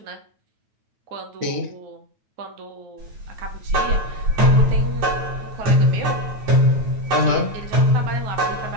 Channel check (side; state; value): left; late; 9.1 ms